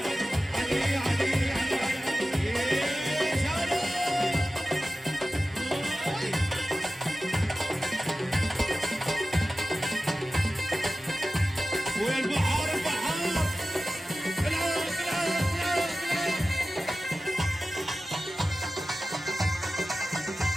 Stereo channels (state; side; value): normal; both; correlation 0.95